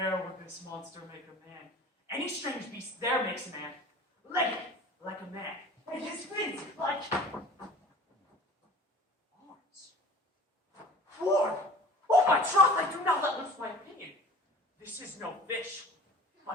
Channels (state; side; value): normal; both; correlation 0.43